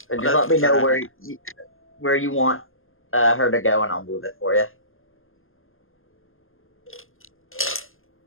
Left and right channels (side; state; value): right; late; 0.60 ms